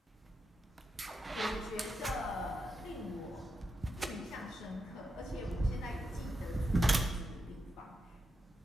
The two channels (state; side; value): normal; both; correlation 0.86